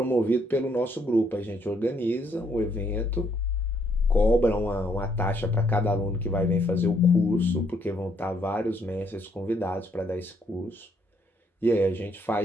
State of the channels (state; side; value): normal; both; correlation 0.70